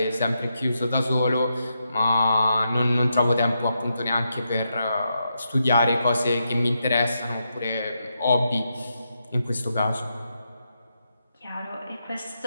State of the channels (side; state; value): both; inverted; correlation -0.84